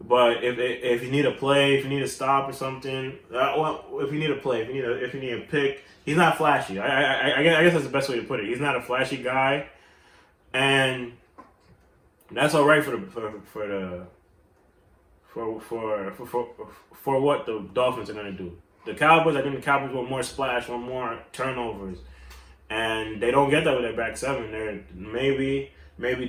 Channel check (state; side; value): identical; both; correlation 1.00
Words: if you need a play, if you need a stop or something, if you need a play, if you need a pick, he's not flashy. I guess that's the best way to put it. He's not a flashy guy, and that's all right for what the Dolphins are gonna do. The Cowboys, I think the Cowboys want more splash, want more turnovers, and they don't get that with their back seven. Maybe